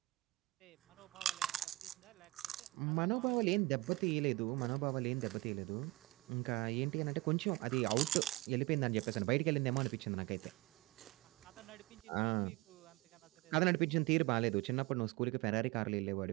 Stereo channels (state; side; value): quieter; left; 21.2 dB